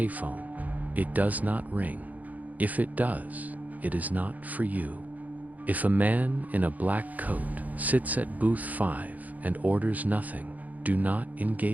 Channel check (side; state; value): left; late; 0.078 ms